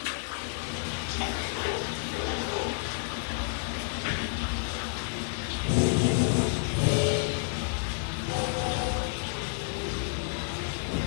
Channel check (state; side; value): silent; right; 58 dB below the other